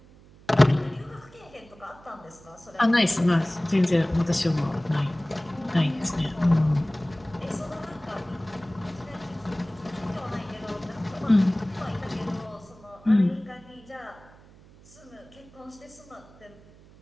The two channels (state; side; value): noise; right; hum, 24 dB below the sound